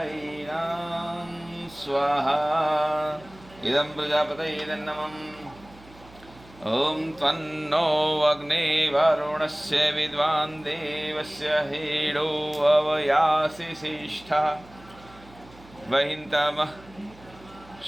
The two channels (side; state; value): right; noise; hum, 23 dB below the sound